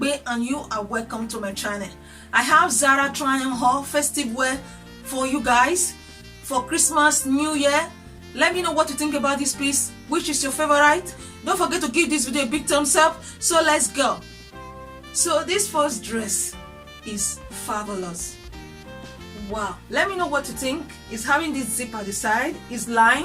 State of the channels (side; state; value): both; identical; correlation 1.00